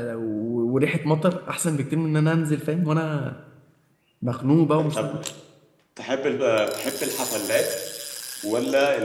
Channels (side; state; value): both; identical; correlation 1.00